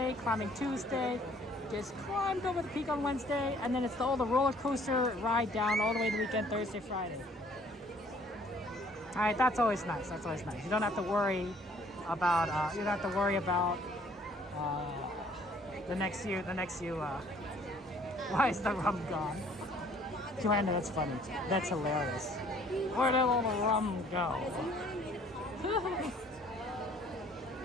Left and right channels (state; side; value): normal; both; correlation 0.58